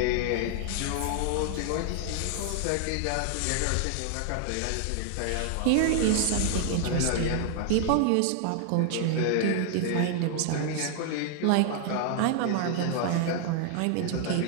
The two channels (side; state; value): both; different; correlation 0.00